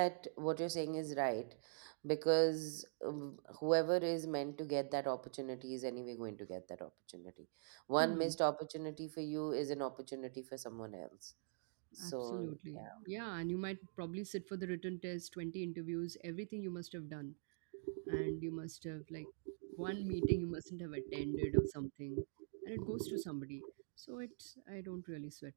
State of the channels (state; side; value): silent; left; digital silence